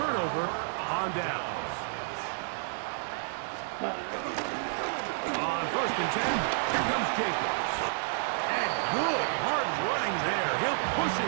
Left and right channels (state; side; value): silent; left; digital silence